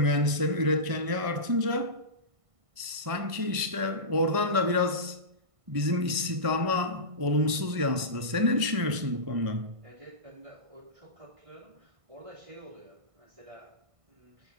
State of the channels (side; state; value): left; late; 1.5 ms